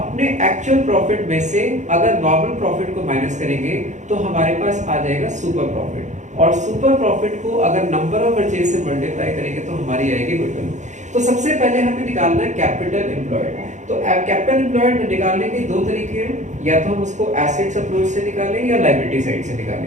एक्चुअल प्रॉफिट में से अगर नॉर्मल प्रॉफिट को माइनस करेंगे तो हमारे पास आ जाएगा सुपर प्रॉफिट, और सुपर प्रॉफिट को अगर नंबर ऑफ परचेज से मल्टीप्लाई करेंगे तो हमारी आएगी गुडविल। तो सबसे पहले हमें निकालना है कैपिटल एम्प्लॉयड। तो कैपिटल एम्प्लॉयड निकालने के दो तरीके हैं, या तो हम उसको एसेट्स अप्रोच से निकालें या लायबिलिटी साइड से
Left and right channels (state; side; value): late; left; 0.35 ms